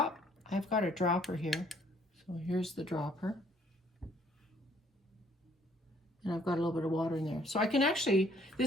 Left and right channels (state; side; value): normal; both; correlation 0.63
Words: I've got a dropper here. So here's the dropper. And I've got a little bit of water in there. So I can actually,